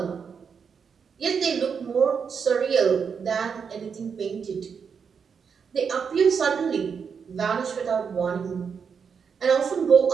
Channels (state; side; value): quieter; left; 6.4 dB